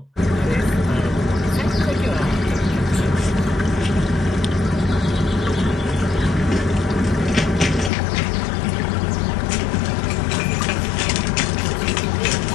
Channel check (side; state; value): right; drops out; at 7.9 s